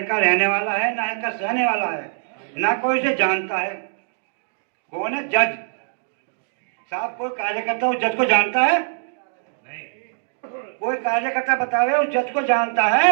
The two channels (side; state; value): left; silent; digital silence